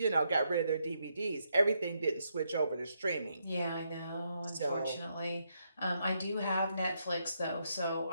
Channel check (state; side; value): inverted; both; correlation -0.79